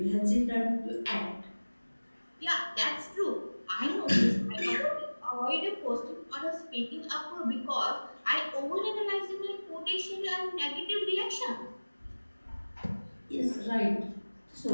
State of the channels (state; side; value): inverted; both; correlation -1.00